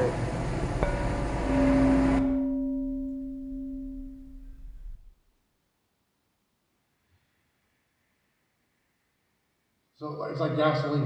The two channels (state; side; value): identical; both; correlation 1.00